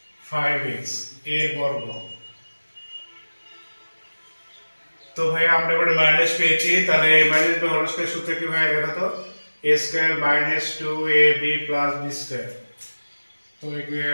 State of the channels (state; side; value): inverted; both; correlation -1.00